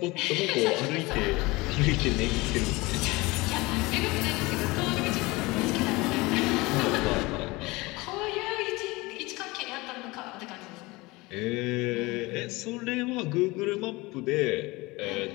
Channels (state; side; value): quieter; right; 22.7 dB